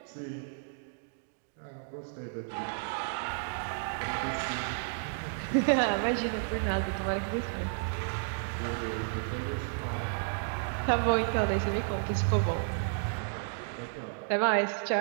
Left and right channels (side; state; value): left; silent; digital silence